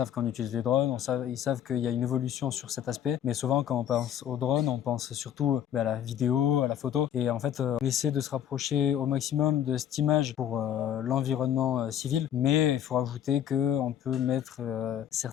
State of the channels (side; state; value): right; quieter; 10.1 dB